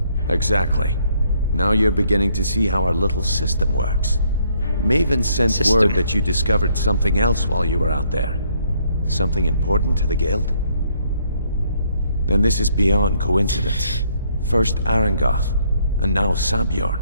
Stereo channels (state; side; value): inverted; both; correlation -0.68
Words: Exactly. Now you're beginning to see how our little system works. Maven sent word that you discovered something else while you were out there. Something important to the guild? Then this is beyond coincidence. First Arangoth, and now